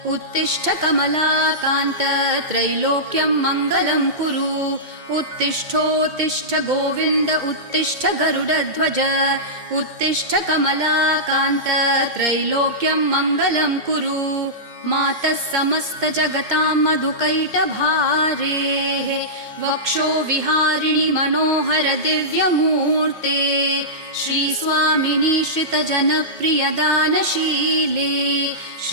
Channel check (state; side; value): late; left; 2.1 ms